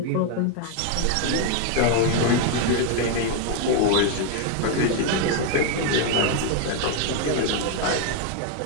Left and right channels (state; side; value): different; both; correlation 0.01